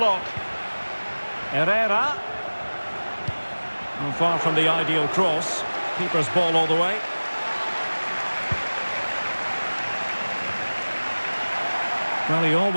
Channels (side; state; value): both; inverted; correlation -1.00